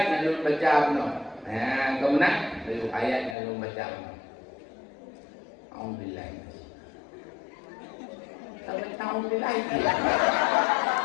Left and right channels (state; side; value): drops out; right; at 3.4 s